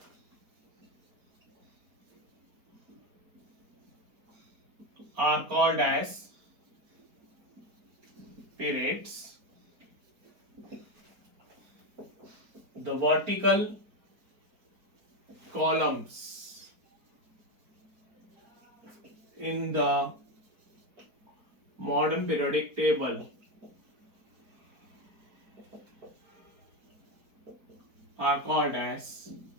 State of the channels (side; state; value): left; late; 4.4 ms